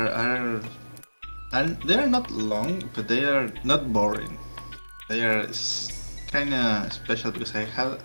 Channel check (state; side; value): inverted; both; correlation -1.00